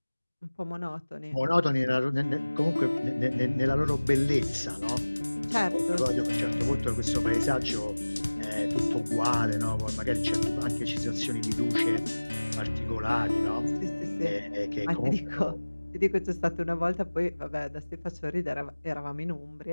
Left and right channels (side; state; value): both; inverted; correlation -1.00